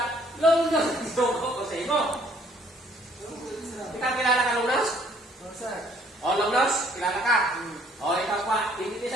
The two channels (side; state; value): both; normal; correlation 0.62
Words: Lunas, dogo ko sa imo. Ikaw kilala ka, Lunas? Oo, sir. O, Lunas, kilala ka? O, ikaw pa. Hindi